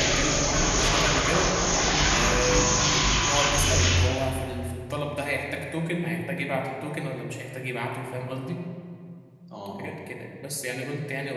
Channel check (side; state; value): both; identical; correlation 1.00